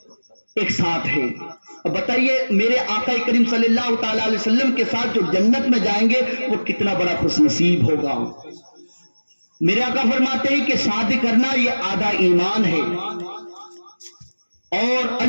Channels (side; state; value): both; inverted; correlation -1.00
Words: ایک ساتھ ہے. اب بتائیے میرے آقا کریم صلی اللہ تعالی علیہ وسلم کے ساتھ جو جنت میں جائیں گے وہ کتنا بڑا خوش نصیب ہوگا. میرے آقا فرماتے ہیں کہ شادی کرنا یہ آدھا ایمان ہے، اور